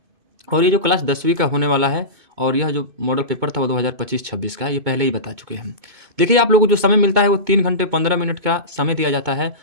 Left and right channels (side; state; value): left; late; 2.2 ms